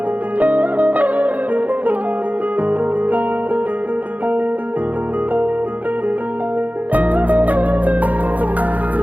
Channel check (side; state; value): left; late; 0.077 ms